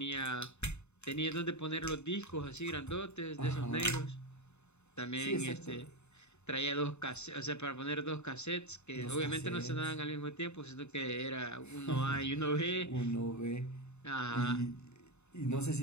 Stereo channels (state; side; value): late; right; 0.82 ms